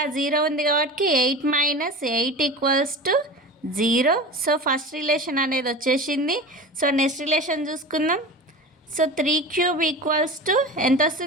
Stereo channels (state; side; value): normal; both; correlation 0.31